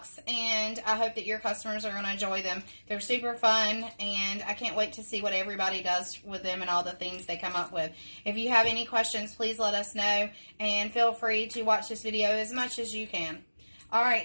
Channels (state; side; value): inverted; both; correlation -1.00